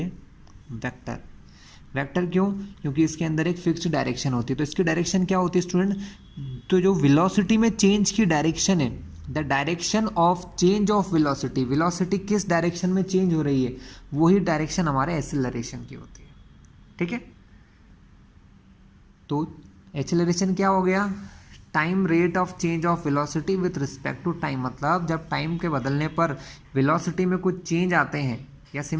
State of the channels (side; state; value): both; identical; correlation 1.00